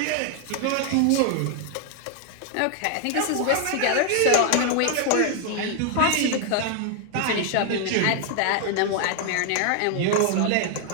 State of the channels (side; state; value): both; different; correlation 0.00